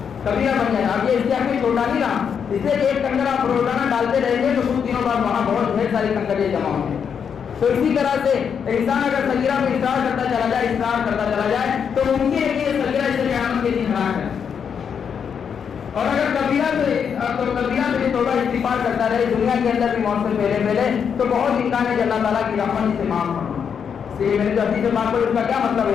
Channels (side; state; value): right; quieter; 7.2 dB